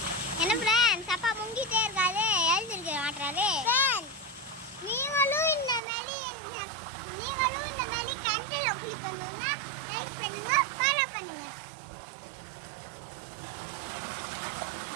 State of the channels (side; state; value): left; drops out; at 5.8 s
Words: என்ன ஃப்ரெண்ட்ஸ், அப்பா முங்கிட்டே இருக்காரு, எழுந்திருக்க மாட்டாரு. நீங்களும் இந்த மாதிரி கண்டில குளிக்கணும்னா லைக் பண்ணுங்க, ஃபாலோ பண்ணுங்க.